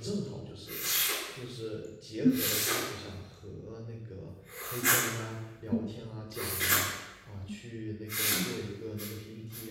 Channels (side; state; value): both; identical; correlation 1.00